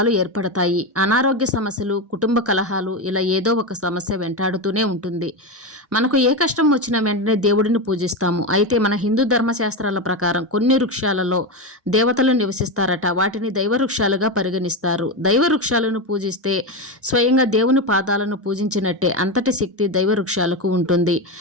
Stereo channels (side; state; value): both; normal; correlation 0.15